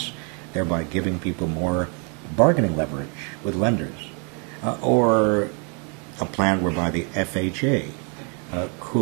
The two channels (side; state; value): left; quieter; 35.1 dB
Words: thereby giving people more bargaining leverage with lenders, or a plan whereby the FHA